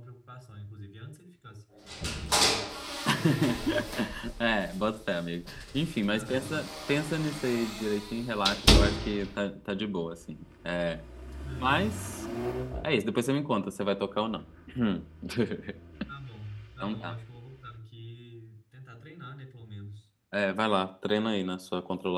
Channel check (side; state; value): both; identical; correlation 1.00